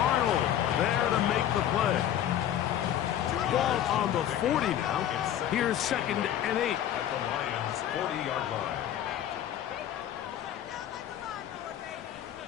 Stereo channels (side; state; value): right; quieter; 11.0 dB